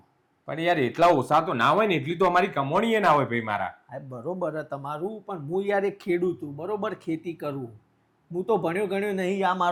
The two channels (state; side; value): identical; both; correlation 1.00